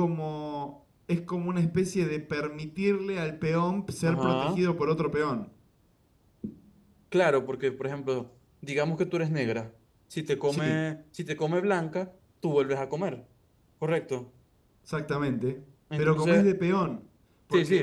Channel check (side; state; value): both; identical; correlation 1.00